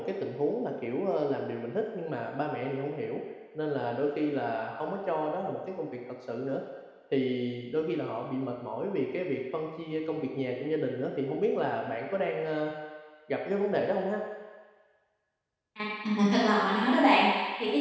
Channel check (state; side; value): identical; both; correlation 1.00